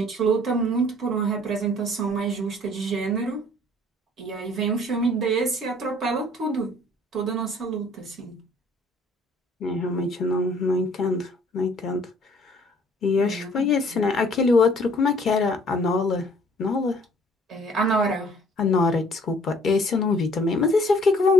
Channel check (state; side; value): normal; both; correlation 0.57